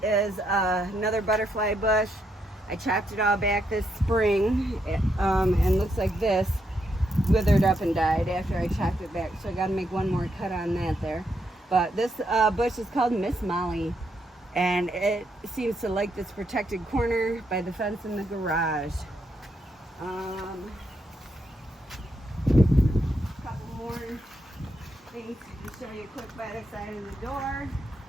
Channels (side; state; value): both; normal; correlation 0.79